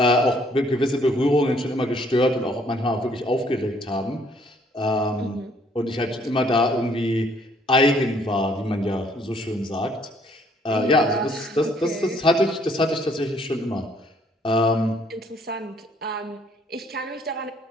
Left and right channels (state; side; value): normal; both; correlation 0.64